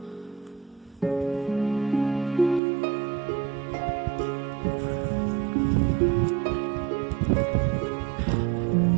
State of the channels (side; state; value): left; drops out; at 2.6 s